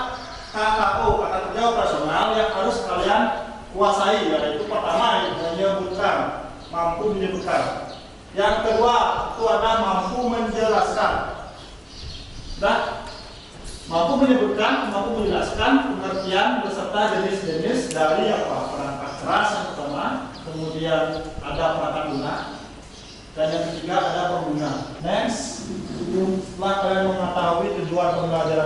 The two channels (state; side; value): identical; both; correlation 1.00